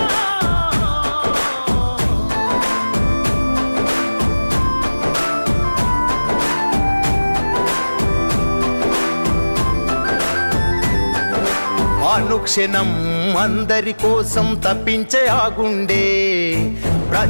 అనుక్షణం అందరి కోసం తప్పించే ఆగుండే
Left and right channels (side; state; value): both; inverted; correlation -1.00